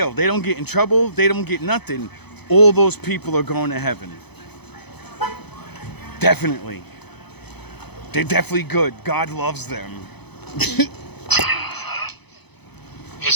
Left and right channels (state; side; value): late; right; 0.98 ms